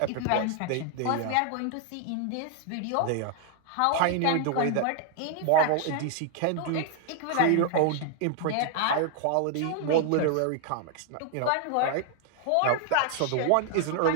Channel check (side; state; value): both; different; correlation 0.00